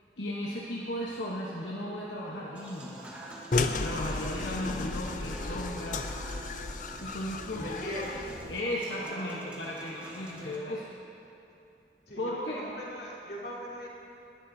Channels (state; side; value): normal; both; correlation 0.48